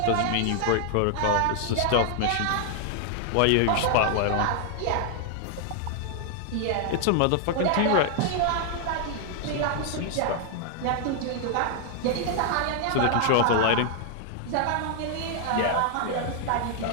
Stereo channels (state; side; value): different; both; correlation 0.00